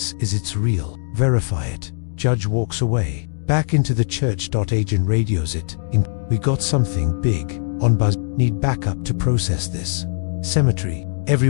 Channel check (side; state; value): right; silent; digital silence